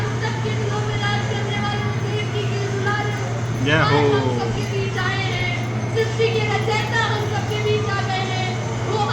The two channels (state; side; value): identical; both; correlation 1.00